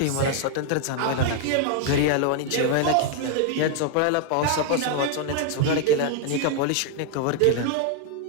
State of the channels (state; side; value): different; both; correlation 0.00